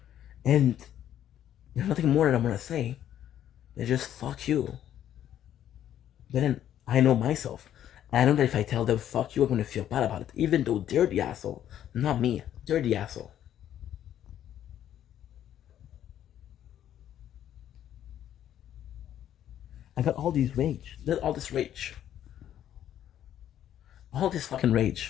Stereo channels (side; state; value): right; quieter; 10.9 dB